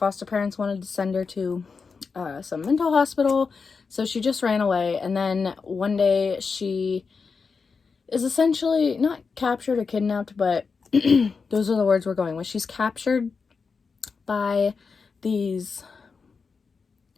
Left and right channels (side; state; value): right; quieter; 5.0 dB